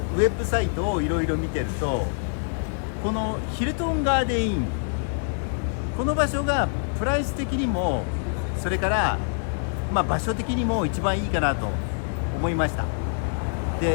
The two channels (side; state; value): right; silent; digital silence